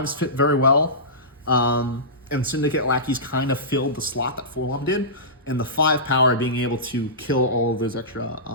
fit very well, and Syndicate lackeys kind of filled the slot that Forlom did, and the 5 power being able to kill all of those extra,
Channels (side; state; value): both; normal; correlation -0.20